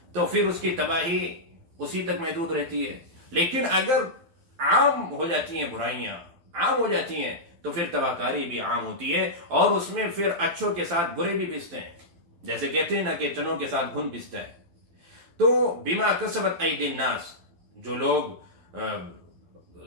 تو پھر اس کی تباہی اسی تک محدود رہتی ہے۔ لیکن اگر عام ہو جاتی ہیں برائیاں، عام ہو جاتی ہیں، تو پھر تباہ کاری بھی عام ہوتی ہے، اور اس میں پھر اچھوں کے ساتھ برے بھی پستے ہیں، جیسے کہتے ہیں نا کہ چنوں کے ساتھ گھن پستا ہے۔ تو بما کسبت ایدی الناس، جو لوگ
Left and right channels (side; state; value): left; late; 12 ms